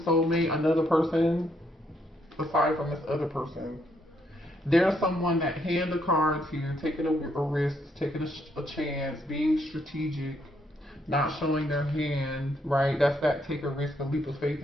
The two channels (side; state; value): both; normal; correlation 0.74